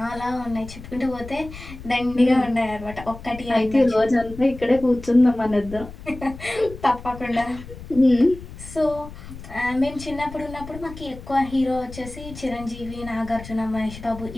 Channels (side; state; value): left; noise; rumble, 14 dB below the sound